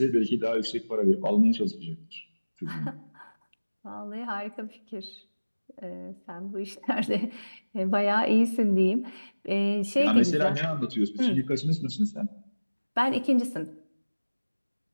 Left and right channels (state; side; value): inverted; both; correlation -1.00